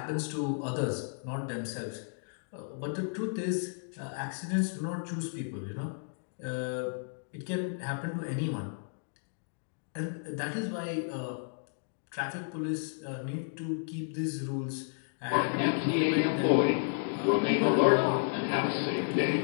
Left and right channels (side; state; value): right; silent; digital silence